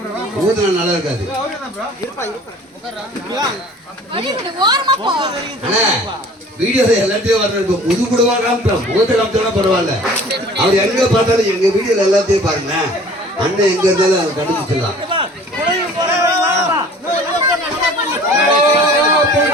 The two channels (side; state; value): both; normal; correlation 0.48